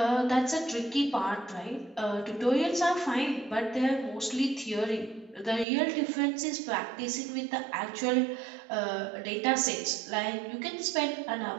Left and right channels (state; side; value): drops out; left; at 5.7 s